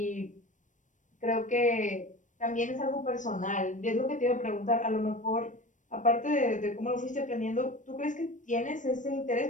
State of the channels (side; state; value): right; late; 0.37 ms